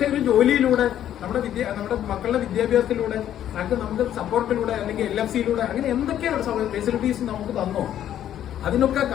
ഒരു ജോലിയിലൂടെ നമ്മുടെ മക്കളുടെ വിദ്യാഭ്യാസത്തിലൂടെ നമുക്ക് സപ്പോർട്ടിലൂടെ അല്ലെങ്കിൽ LFCയിലൂടെ അങ്ങനെ എന്തൊക്കെയാണ് ഫെസിലിറ്റീസ് നമുക്ക് തന്നോ അതിനൊക്കെ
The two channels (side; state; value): right; quieter; 11.0 dB